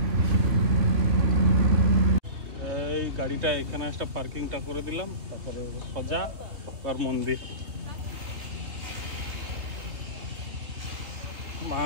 এই গাড়িটা এখানে একটা পার্কিংটা করে দিলাম, তারপরে সোজা আর মন্দির। মা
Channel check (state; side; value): late; left; 3.2 ms